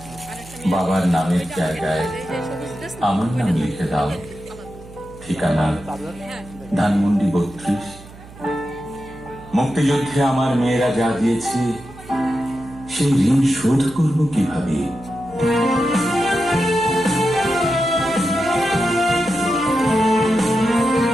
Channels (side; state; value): right; noise; hum, 19 dB below the sound